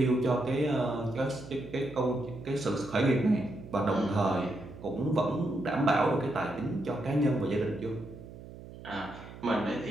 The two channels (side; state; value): right; noise; hum, 15 dB below the sound